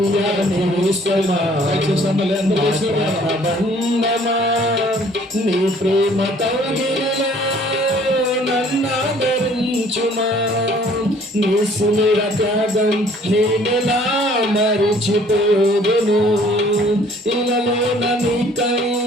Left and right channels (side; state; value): both; normal; correlation 0.57